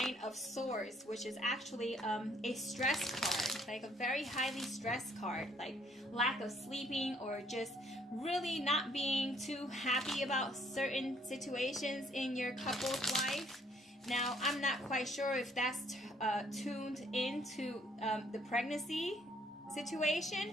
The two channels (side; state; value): both; normal; correlation 0.65